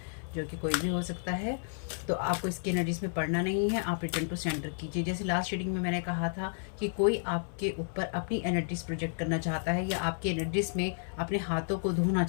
जो कि कोई भी हो सकता है, तो आपको इसकी एनर्जीज में पढ़ना नहीं है। आप रिटर्न टू सेंटर कीजिए। जैसे लास्ट रीडिंग में मैंने कहा था कि कोई आपके ऊपर अपनी एनर्जीज प्रोजेक्ट करना चाहता है या आपकी एनर्जीज में अपने हाथों को धोना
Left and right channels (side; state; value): right; silent; 57 dB below the other